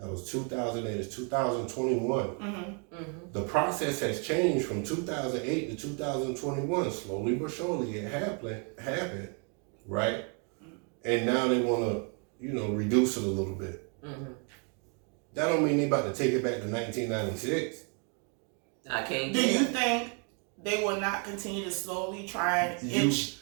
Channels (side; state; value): left; quieter; 38.4 dB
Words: was 2008. It's 2021. The process has changed from 2008 to 2021. Slowly but surely, it happened, right? And now they want to, reduce it a little bit. That don't mean they about to take it back to 1996. I can't. Do you think they will not continue to slowly try and inch